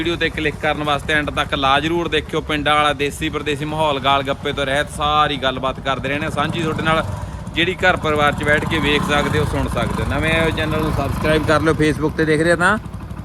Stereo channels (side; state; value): both; identical; correlation 1.00